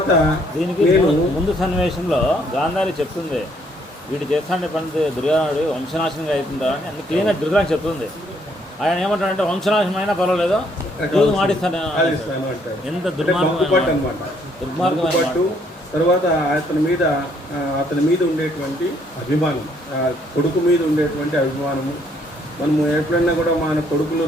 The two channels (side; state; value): both; normal; correlation 0.67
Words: దీనికి ముందు సన్నివేశంలో గాంధారి చెప్తుంది, వీడు చేస్తాండే పని దుర్యోధనుడు వంశనాశనంగా అవుతుందా అని అన్ని క్లీన్గా దుర్యోధన చెప్తుంది. ఆయన ఏమంటాడంటే వంశనాశనం అయినా పర్వాలేదు, జూదం ఆడిస్తాను అంటాడు. ఎంత దుర్మార్గం. తర్వాత అతని మీద ఉండేటువంటి అభిమానం, కొడుకు మీద ఉండేటువంటి అభిమానము. మనము ఎప్పుడైనా కూడా మన కొడుకులు